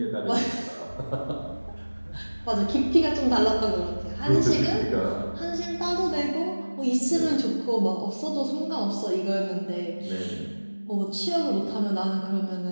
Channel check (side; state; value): both; inverted; correlation -1.00